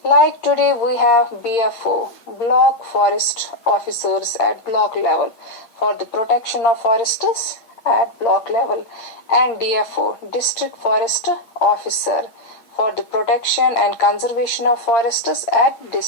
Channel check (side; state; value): right; late; 8.4 ms